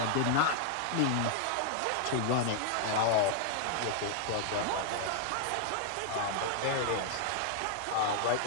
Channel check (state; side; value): different; both; correlation -0.01